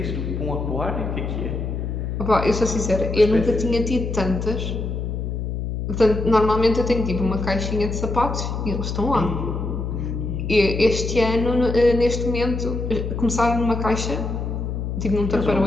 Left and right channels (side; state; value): left; noise; hum, 3 dB below the sound